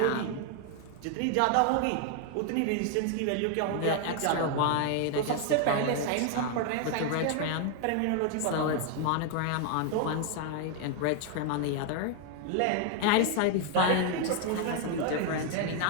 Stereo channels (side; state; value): both; different; correlation 0.00